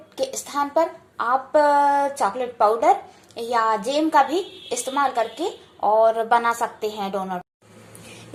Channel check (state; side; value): identical; both; correlation 1.00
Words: के स्थान पर आप चॉकलेट पाउडर या जेम का भी इस्तेमाल करके और बना सकते हैं डोनट।